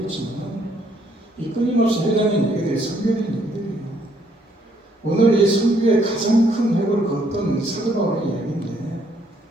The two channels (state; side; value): normal; both; correlation 0.68